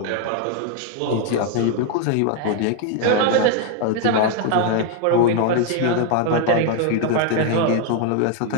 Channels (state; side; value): different; both; correlation 0.00